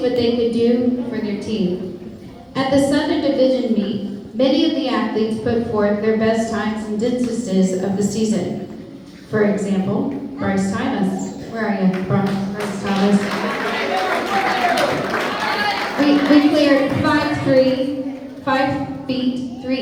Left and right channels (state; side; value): identical; both; correlation 1.00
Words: they could do for their team. At the Southern Division meet, many of the athletes put forth their best times and distances of the season. For example, Bryce Thomas. Where are you, Bryce Thomas? We cleared 5 feet, 3